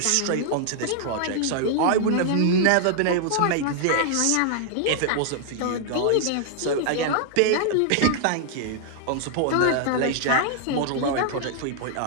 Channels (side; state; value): both; different; correlation -0.01